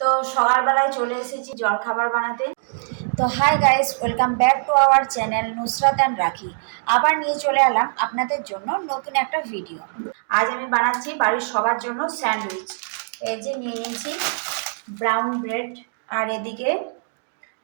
তো সকালবেলায় চলে এসেছি জলখাবার বানাতে। তো hi guys, welcome back to our channel Nusrat and রাখি। আবার নিয়ে চলে এলাম আপনাদের জন্য নতুন একটা ভিডিও। আজ আমি বানাচ্ছি বাড়ির সবার জন্য স্যান্ডউইচ। এই যে নিয়ে নিয়েছি ব্রাউন ব্রেড, আর এদিকে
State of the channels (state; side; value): silent; left; digital silence